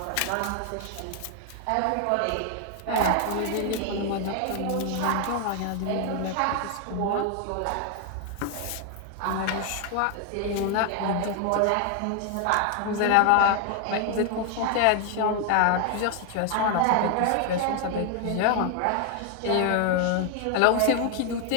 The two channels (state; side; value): different; both; correlation 0.00